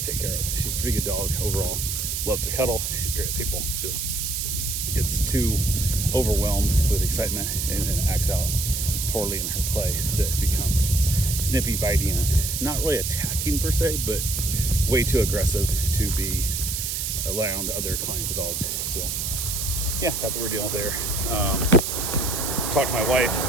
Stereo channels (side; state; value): right; noise; hiss, 2 dB below the sound